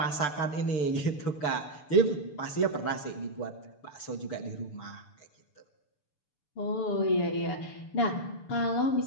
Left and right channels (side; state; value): right; late; 6.8 ms